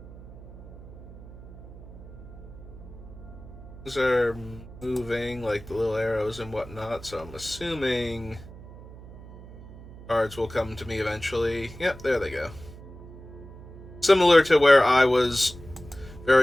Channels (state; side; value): noise; right; hum, 16 dB below the sound